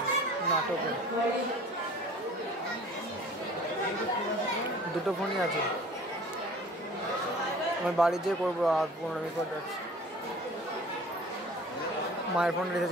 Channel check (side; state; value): both; normal; correlation 0.47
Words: নাটকে দুটো ফোনই আছে আমি বাড়ি যেয়ে করবো আর 15 মিনিট পর যাচ্ছি মায়ের ফোন রিচার্জ